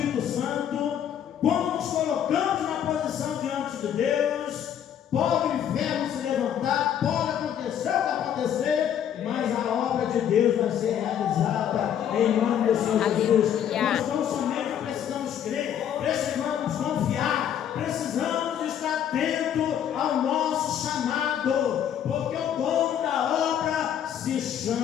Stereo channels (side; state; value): right; quieter; 9.5 dB